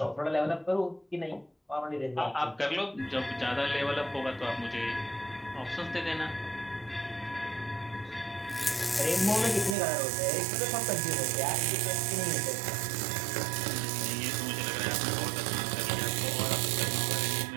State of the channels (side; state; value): left; drops out; at 9.8 s